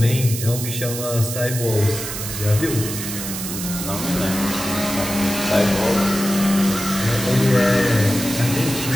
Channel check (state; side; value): noise; right; hiss, 6 dB below the sound